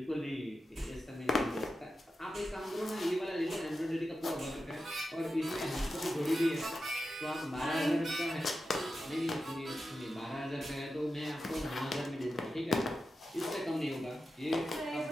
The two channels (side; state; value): both; normal; correlation 0.91